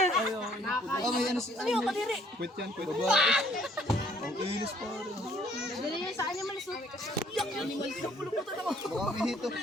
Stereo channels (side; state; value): both; normal; correlation 0.61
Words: May ano si Ano yung kadiri? Quit yan, quit. Babae. Ang ilis pa rin. Dali niya sa animals. Yak, animals. Puluputan ako. Baka may hito.